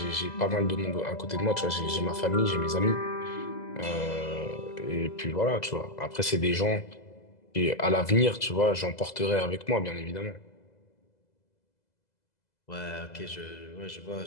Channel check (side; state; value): right; late; 2.0 ms